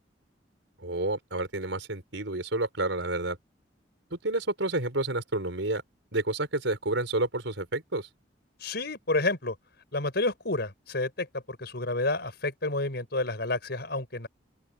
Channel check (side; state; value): both; normal; correlation -0.15